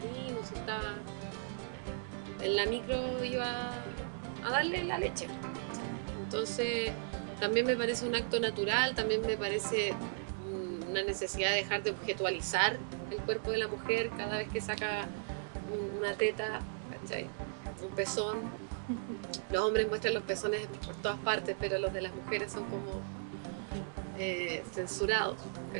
o si estaba en la micro, iba a darle la leche. Entonces también me parece un acto natural, también me parece una necesidad de dejar de objetualizar el cuerpo de la mujer cada vez que saca una teta, ¿cachai? Un pezón. Los hombres muestran los pezones por todas partes, pero los de las mujeres son como censurados,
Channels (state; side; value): silent; left; 53 dB below the other